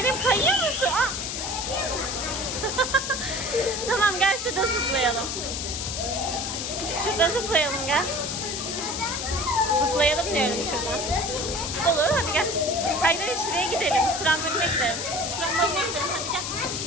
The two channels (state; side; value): noise; left; hiss, 4 dB below the sound